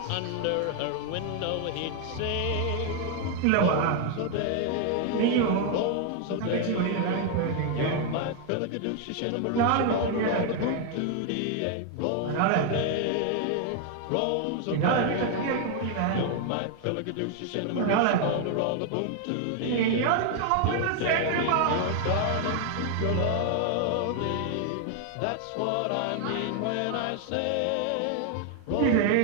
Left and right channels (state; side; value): different; both; correlation 0.00